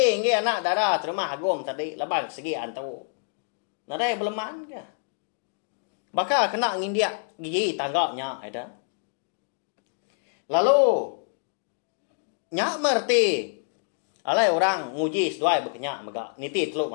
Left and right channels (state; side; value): silent; right; digital silence